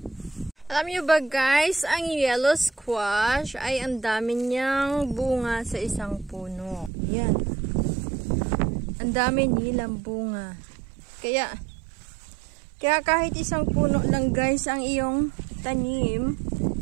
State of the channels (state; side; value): drops out; left; at 6.9 s